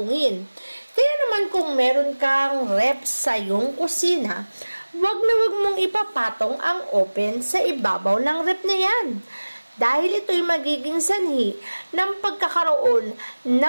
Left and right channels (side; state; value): both; inverted; correlation -1.00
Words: Kaya naman kung meron kang ref sa iyong kusina, wag mong ipapatong ang open sa ibabaw ng ref na yan. Dahil ito'y magiging sanhi ng pagkakaroon